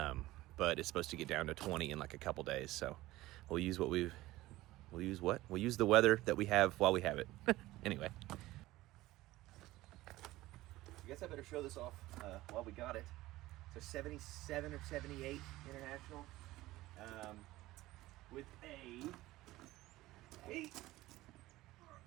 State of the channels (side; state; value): left; quieter; 17.5 dB